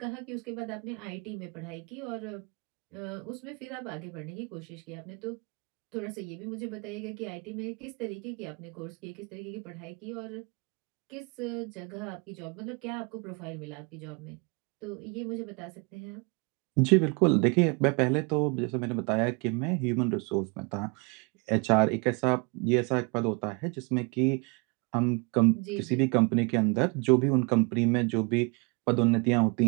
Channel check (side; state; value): left; quieter; 32.1 dB